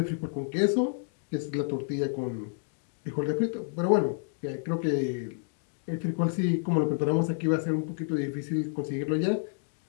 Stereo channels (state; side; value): silent; right; digital silence